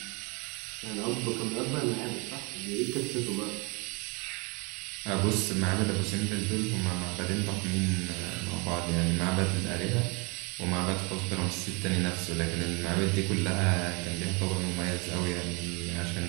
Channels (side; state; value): left; quieter; 30.4 dB